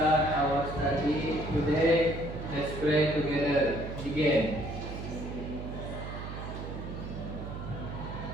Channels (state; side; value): noise; right; hum, 8 dB below the sound